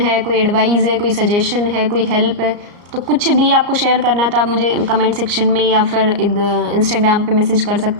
कोई एडवाइस है, कोई सजेशन है, कोई हेल्प है, तो कुछ भी आपको शेयर करना है तो आप मुझे कमेंट सेक्शन में या फिर इंस्टाग्राम पे मैसेज कर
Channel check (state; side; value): late; left; 34 ms